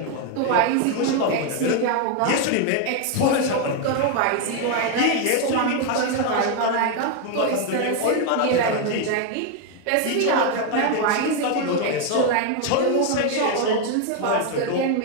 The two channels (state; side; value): different; both; correlation 0.01